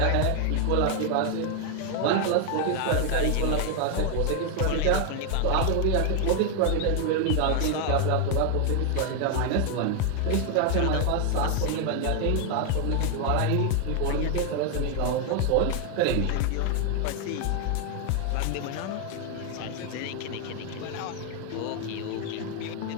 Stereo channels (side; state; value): both; different; correlation 0.00